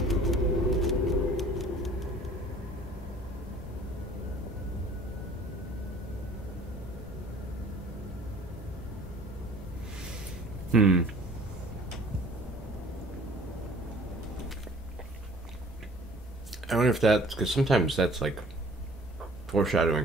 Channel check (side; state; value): both; normal; correlation 0.51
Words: I wonder if that's because sometimes that's like foreshadowing